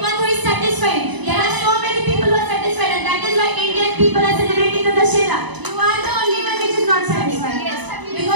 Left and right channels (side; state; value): left; late; 1.0 ms